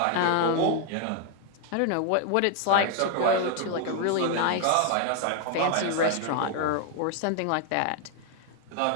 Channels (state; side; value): different; both; correlation 0.00